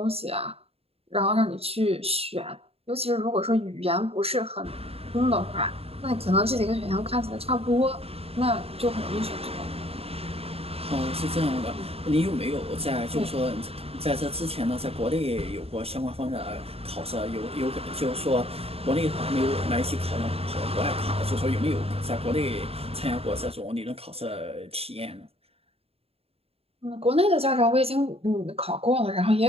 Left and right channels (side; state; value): left; late; 0.29 ms